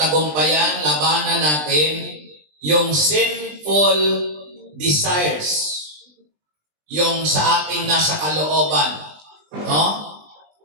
labanan natin yung sinful desires, yung sa ating nasa kalooban, no?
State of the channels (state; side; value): late; left; 20 ms